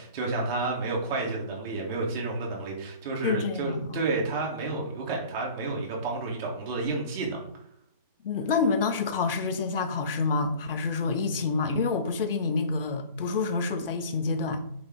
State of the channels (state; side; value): inverted; both; correlation -0.42